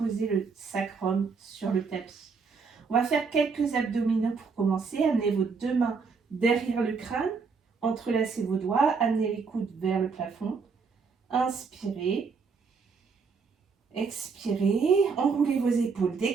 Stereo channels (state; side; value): quieter; left; 5.1 dB